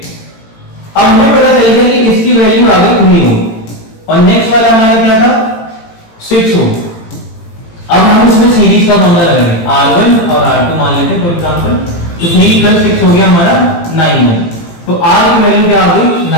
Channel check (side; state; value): right; late; 18 ms